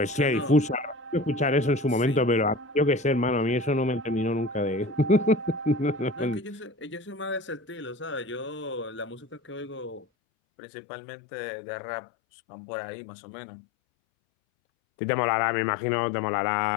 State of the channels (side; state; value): right; drops out; at 10.1 s